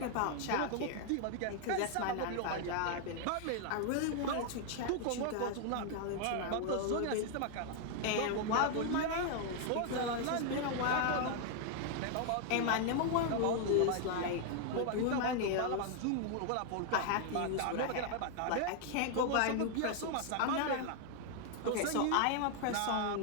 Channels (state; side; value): different; both; correlation 0.00